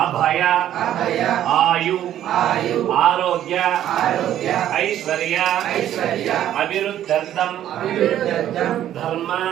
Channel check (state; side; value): quieter; left; 11.6 dB